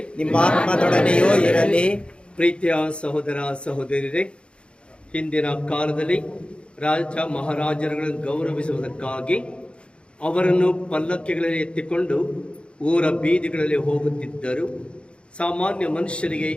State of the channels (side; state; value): right; late; 0.057 ms